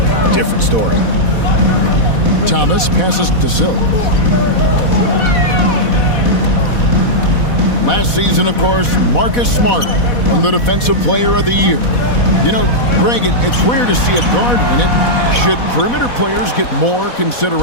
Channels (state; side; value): late; right; 4.1 ms